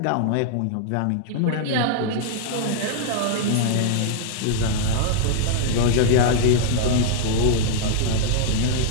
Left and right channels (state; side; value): different; both; correlation -0.01